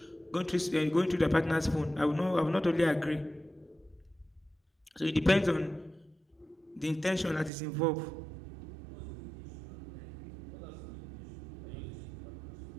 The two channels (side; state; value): left; drops out; at 7.5 s